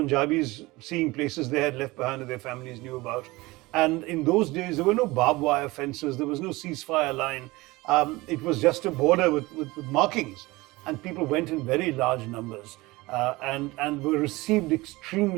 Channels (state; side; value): quieter; left; 21.3 dB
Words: seeing places they had left behind that their families knew about. And in those days, there were no barbed wire fences, there was no ceasefire line. It was just a border with markings. And people went in very large numbers and were received